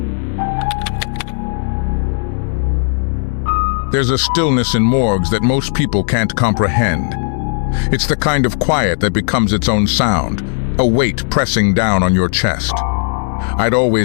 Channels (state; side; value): silent; right; digital silence